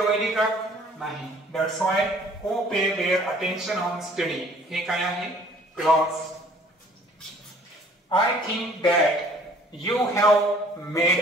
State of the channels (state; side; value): normal; both; correlation 0.55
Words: व्हायली का? नाही. That's why who pay their attention on study हे काय आहे clause. I think that you have